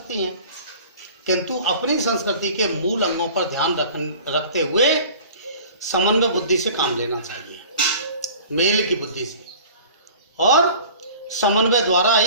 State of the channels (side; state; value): both; inverted; correlation -0.44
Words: हैं, किंतु अपनी संस्कृति के मूल अंगों पर ध्यान रखते हुए समन्वय बुद्धि से काम लेना चाहिए, मेल की बुद्धि से, और समन्वय द्वारा